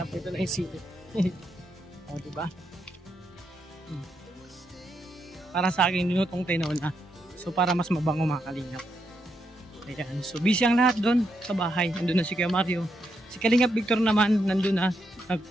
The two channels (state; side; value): normal; both; correlation 0.81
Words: Ito na yung sili. O, diba? Para sa akin, linutong tinola. So, para mas mabango mga kalingap. Ayan. So, busy ang lahat doon sa bahay. Nandun na si Kuya Mario. Si Kalingap Victor naman, nandun na.